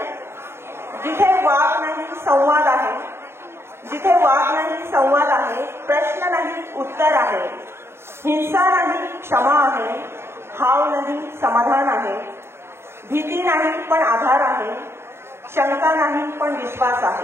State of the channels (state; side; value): late; left; 0.12 ms